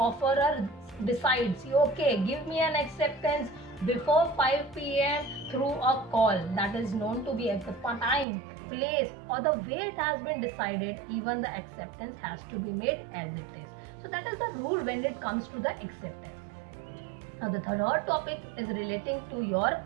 decides, okay, give me an acceptance before 5 p.m. through a call, that is known to be at the time, place or the way it has been decided, even the acceptance has to be made as it is. So that is the rule when it comes to the acceptance. Now the third topic is relating to your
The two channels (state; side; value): drops out; left; at 8.2 s